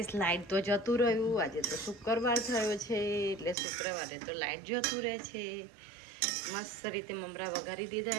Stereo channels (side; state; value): left; drops out; at 3.6 s